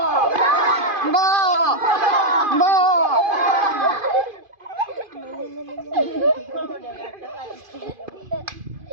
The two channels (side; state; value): left; late; 2.5 ms